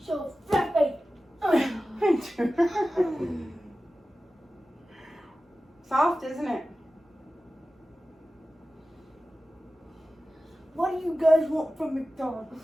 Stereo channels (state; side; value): normal; both; correlation 0.95